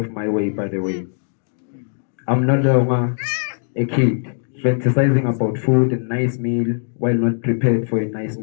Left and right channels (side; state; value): right; silent; digital silence